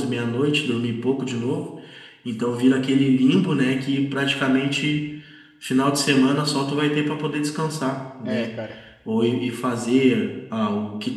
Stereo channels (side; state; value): both; identical; correlation 1.00